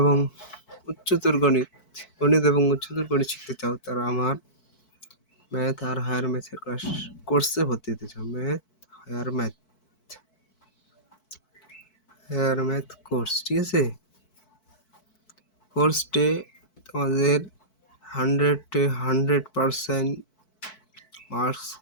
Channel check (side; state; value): right; late; 4.6 ms